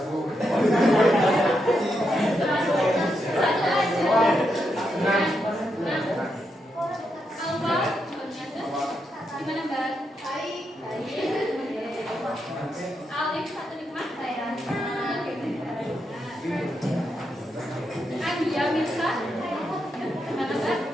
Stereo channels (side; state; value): both; normal; correlation 0.83